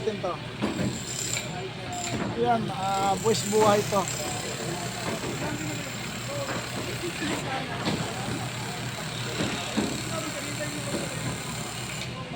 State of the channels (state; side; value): identical; both; correlation 1.00